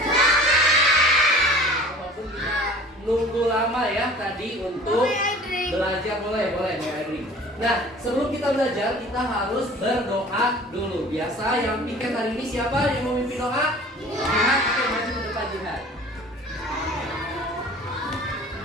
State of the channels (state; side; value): normal; both; correlation 0.45